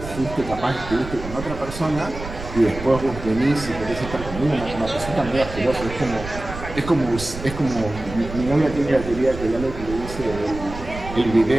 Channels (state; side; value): noise; right; rumble, 10 dB below the sound